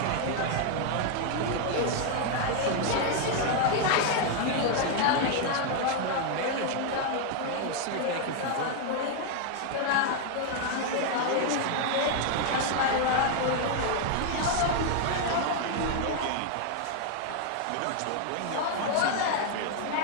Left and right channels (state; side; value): different; both; correlation 0.00